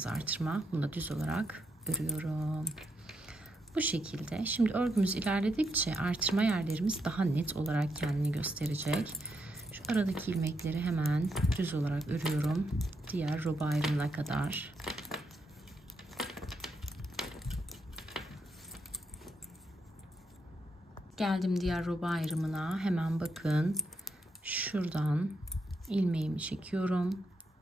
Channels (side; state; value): both; normal; correlation 0.80